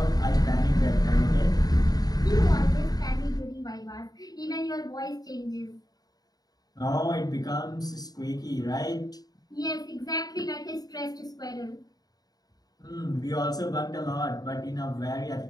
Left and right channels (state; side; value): late; right; 0.18 ms